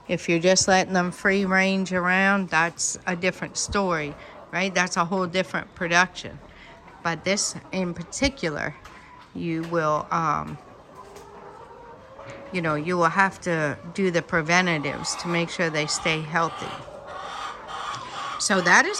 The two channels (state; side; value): identical; both; correlation 1.00